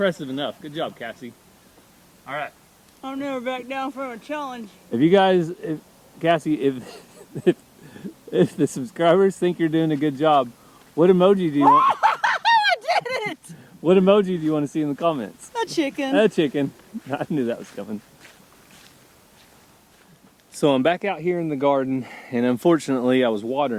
enough. Good job, Cassie. All right. I'll never back down from a challenge. If you guys, Cassie, if the subscribers think you're doing a good job, what emoji do you want? I did it! What emoji do you want to see in the comments? A chicken. A chicken. I knew that was coming. So I'm back out here in the garden, and unfortunately I was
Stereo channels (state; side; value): identical; both; correlation 1.00